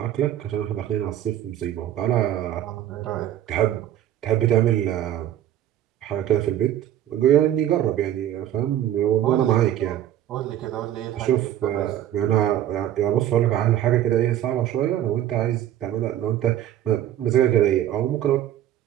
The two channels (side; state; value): left; quieter; 11.7 dB